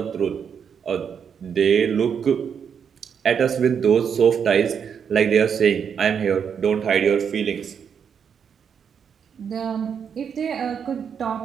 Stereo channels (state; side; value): quieter; left; 7.3 dB